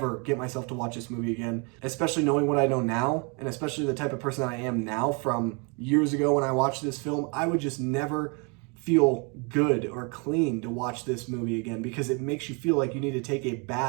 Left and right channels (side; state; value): left; quieter; 33.4 dB